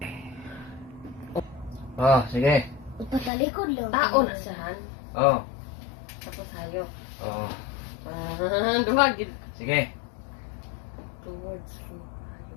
Oh, sige. Ipatalikod lang. Tao na siya, han. Oh. Tapos hayo. Oh. Duhag. Sige. Towards to.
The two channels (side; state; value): right; drops out; at 3.3 s